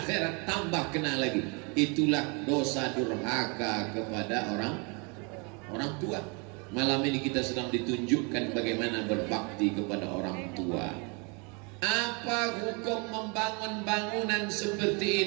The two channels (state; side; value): quieter; left; 32.6 dB